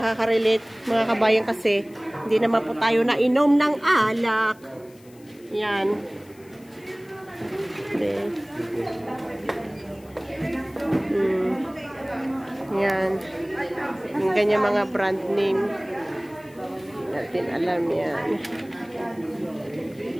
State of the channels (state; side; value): noise; left; hiss, 28 dB below the sound